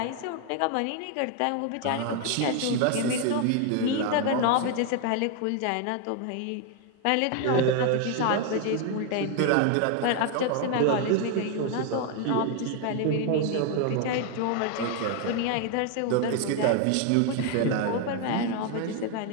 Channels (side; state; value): both; different; correlation 0.00